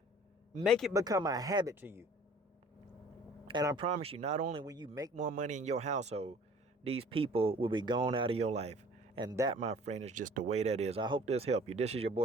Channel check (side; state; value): both; normal; correlation 0.50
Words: Make it become a habit to you. And I promise you, not only will you make more money in your household, these people will be gone out of your life. And that, my friend, is just the way that is. I hope this helped you. This is your